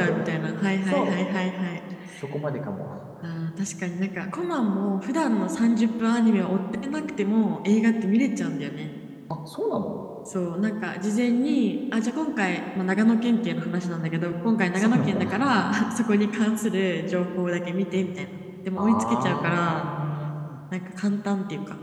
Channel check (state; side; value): identical; both; correlation 1.00